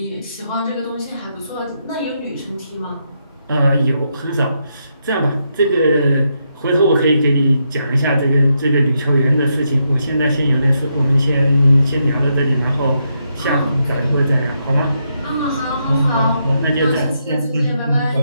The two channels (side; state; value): both; inverted; correlation -0.80